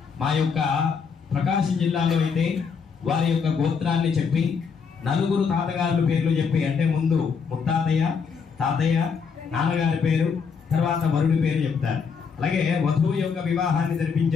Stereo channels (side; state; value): right; quieter; 5.9 dB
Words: మా యొక్క ప్రకాశం జిల్లాలో అయితే వారి యొక్క గోత్రాన్ని చెప్పి 4 తాతగారుల పేర్లు చెప్పి, అంటే ముందు ముత్తాతయ్య, తాతయ్య, నాన్నగారి పేరు, తర్వాత వరుడి పేరు చెప్తారు. అలాగే వధువు యొక్క వివాహాన్ని